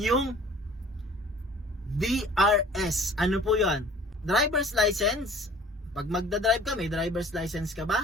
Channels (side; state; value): both; normal; correlation 0.49